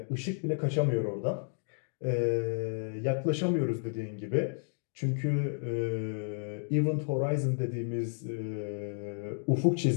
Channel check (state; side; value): silent; right; digital silence